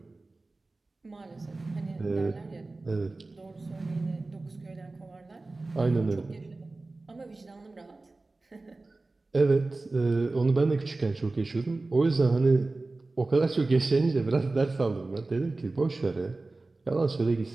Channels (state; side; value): quieter; left; 3.3 dB